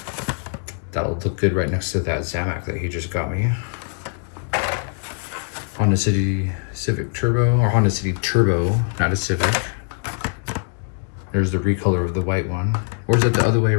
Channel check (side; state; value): right; silent; 59 dB below the other